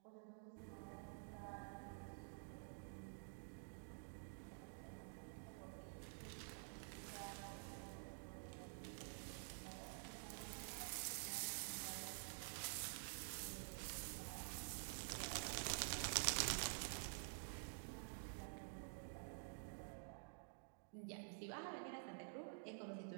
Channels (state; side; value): silent; left; digital silence